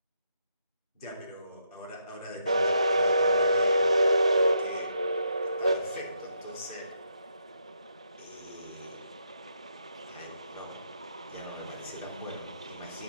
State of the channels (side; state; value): both; inverted; correlation -0.78